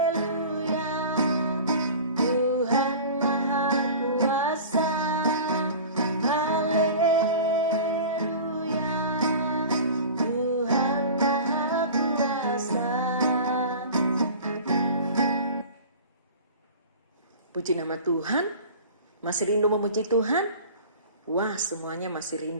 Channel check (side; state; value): both; inverted; correlation -0.38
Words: Puji nama Tuhan. Masih rindu memuji Tuhan? Wah, semuanya masih